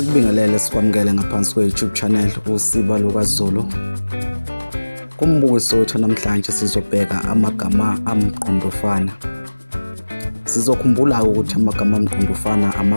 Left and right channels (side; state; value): both; inverted; correlation -1.00